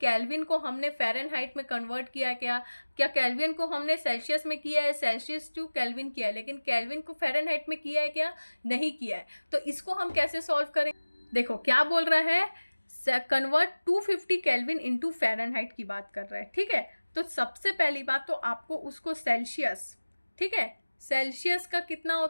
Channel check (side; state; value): both; inverted; correlation -1.00